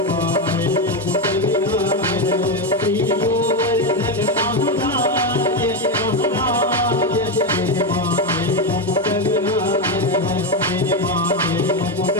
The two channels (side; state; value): both; normal; correlation 0.09